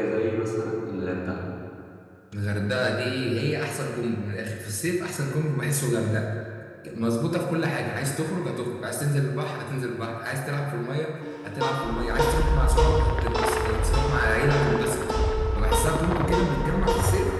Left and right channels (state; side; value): identical; both; correlation 1.00